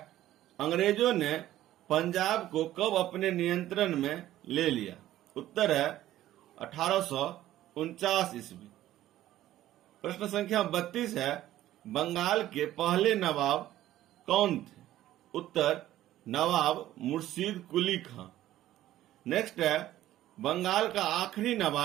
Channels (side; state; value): left; quieter; 13.8 dB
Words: अंग्रेजों ने पंजाब को कब अपने नियंत्रण में ले लिया? उत्तर है 1849 ईस्वी। प्रश्न संख्या 32 है, बंगाल के पहले नवाब कौन थे? उत्तर नवाब मुर्शीद कुली खां। नेक्स्ट है, बंगाल का आखिरी